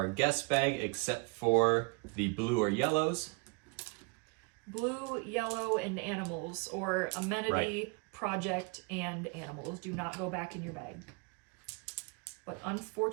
guest bag except for the blue or yellows. Blue, yellow, and animals, or amenity, Right. project, and animals do not go back in your bag. But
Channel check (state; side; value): quieter; left; 33.1 dB